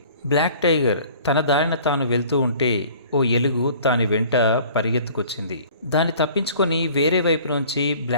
బ్లాక్ టైగర్ తన దారిన తాను వెళ్తూ ఉంటే ఓ ఎలుగు దాని వెంట పరిగెత్తుకొచ్చింది. దాన్ని తప్పించుకొని వేరే వైపు నుంచి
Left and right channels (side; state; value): both; inverted; correlation -0.49